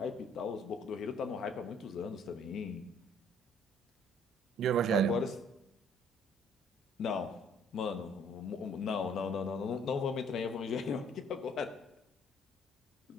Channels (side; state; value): both; normal; correlation 0.59